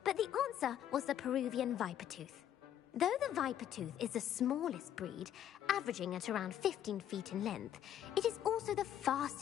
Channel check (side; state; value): right; quieter; 10.6 dB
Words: but the answer was the Peruvian Vipertooth. Though the Vipertooth is the smallest breed, averaging at around 15 feet in length, it is also the